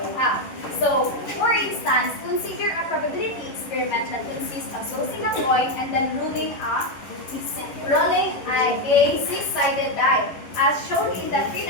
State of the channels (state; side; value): late; right; 11 ms